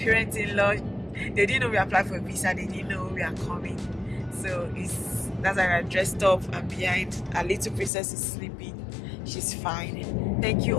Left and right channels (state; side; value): drops out; right; at 7.9 s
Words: They didn't know we applied for a visa, they didn't know we are coming, so that's why we're dressed up, and behind our little princess is sleeping. She's fine. Thank you